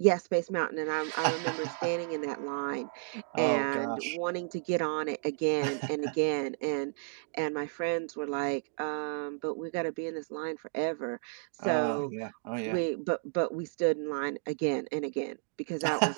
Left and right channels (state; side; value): silent; left; 56 dB below the other